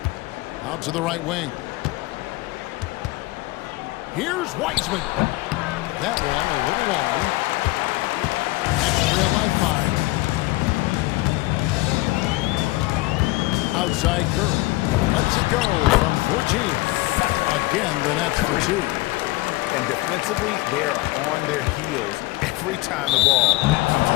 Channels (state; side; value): quieter; right; 20.5 dB